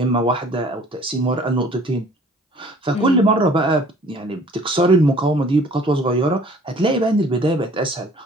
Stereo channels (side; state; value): both; normal; correlation 0.52